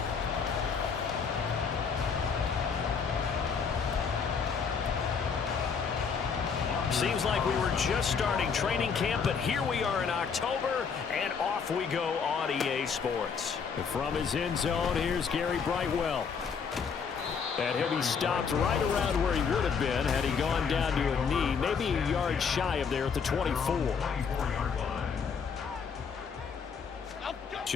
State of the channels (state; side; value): quieter; right; 6.1 dB